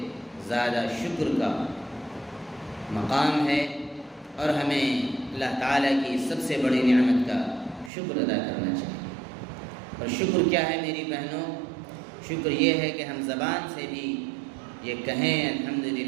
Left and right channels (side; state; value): left; drops out; at 7.9 s